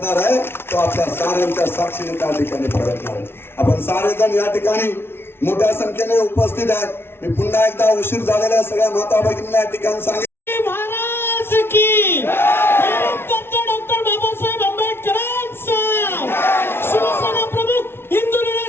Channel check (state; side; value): late; right; 0.12 ms